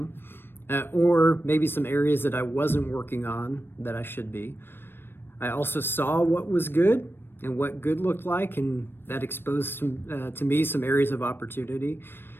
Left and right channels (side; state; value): right; late; 0.10 ms